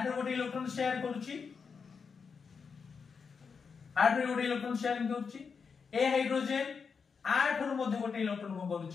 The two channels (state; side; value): quieter; right; 5.7 dB